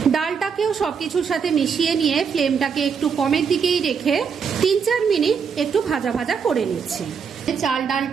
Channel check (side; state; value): left; quieter; 6.4 dB